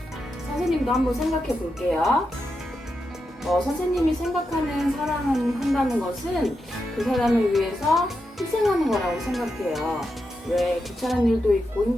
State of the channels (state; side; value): normal; both; correlation 0.86